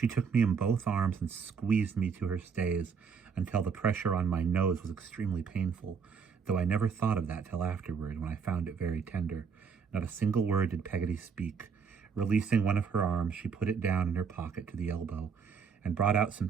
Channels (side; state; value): left; quieter; 6.2 dB